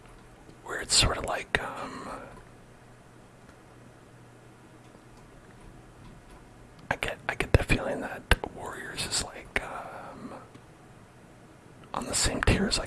Where it's sort of like, I get the feeling that Warriors is like, on the same tier as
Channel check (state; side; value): identical; both; correlation 1.00